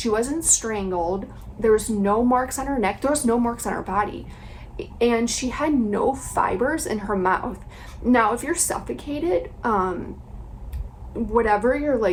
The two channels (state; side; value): identical; both; correlation 1.00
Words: wasn't strangled. There was no marks on her neck. There was no marks on her body, and she had no fibers in her mouth. Now, if you're suffocated, whatever you're